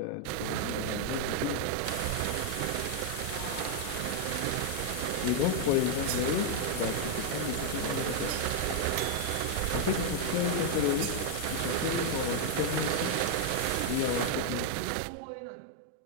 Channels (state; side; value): different; both; correlation 0.00